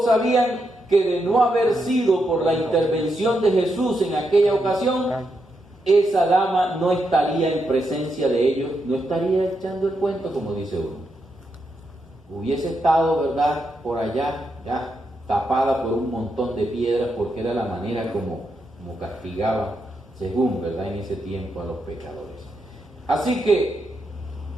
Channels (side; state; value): both; normal; correlation 0.83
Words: sabían que de no haber sido por la intervención de Jesús en aquella ocasión, esa dama no estaría en presencia de ellos, no estaría echando el cuento, como dice uno. Hubiese estado, ¿verdad?, por allá, ya tapada por un montón de piedras, porque era la manera como castigaba, según, ¿verdad?, en ese tiempo a los pecadores. Así que,